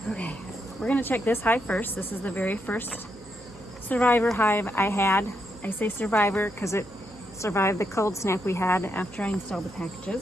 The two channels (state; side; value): noise; right; hum, 23 dB below the sound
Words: Okay, we're gonna check this hive first. This is the very first survivor hive I had. I say survivor because it survived the cold snap we had after I installed the